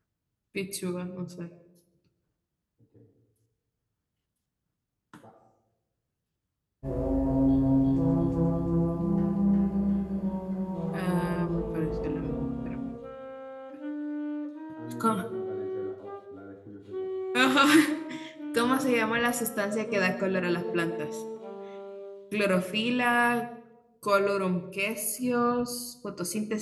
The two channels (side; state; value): both; identical; correlation 1.00